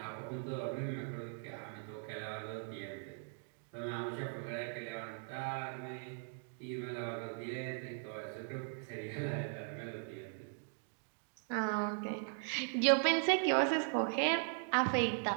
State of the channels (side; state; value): left; silent; 52 dB below the other